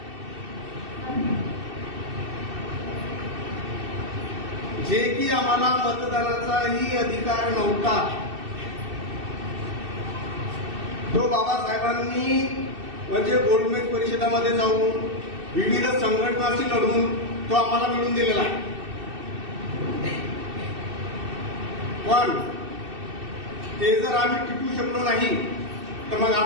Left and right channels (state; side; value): late; left; 2.6 ms